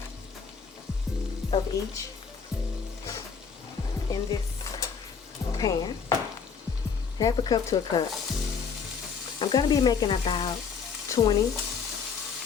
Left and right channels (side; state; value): right; quieter; 6.0 dB